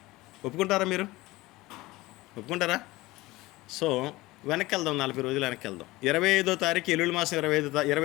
ఒప్పుకుంటారా మీరు? ఒప్పుకుంటారా? సో వెనక్కి వెళ్దాం, 40 రోజులు వెనక్కి వెళ్దాం. 25వ తారీఖు ఎల్లుల్లి మాసం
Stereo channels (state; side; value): quieter; right; 19.7 dB